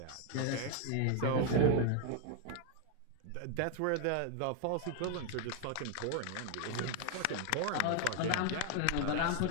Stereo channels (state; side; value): different; both; correlation 0.01